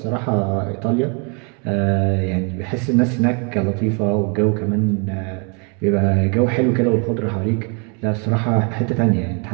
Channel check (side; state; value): left; quieter; 34.7 dB